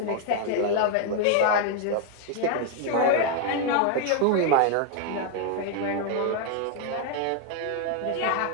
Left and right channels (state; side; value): different; both; correlation 0.00